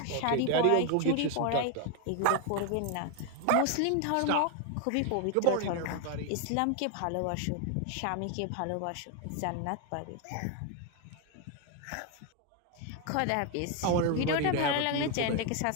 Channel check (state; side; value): different; both; correlation 0.01